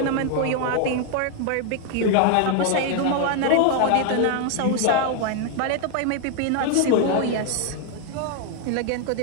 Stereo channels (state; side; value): different; both; correlation 0.00